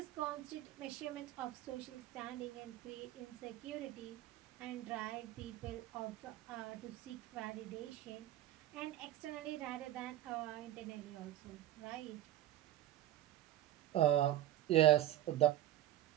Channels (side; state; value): left; quieter; 13.5 dB